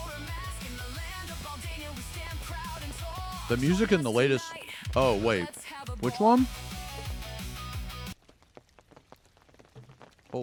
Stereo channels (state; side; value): identical; both; correlation 1.00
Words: The music in the latest... Oh, wait. Which one?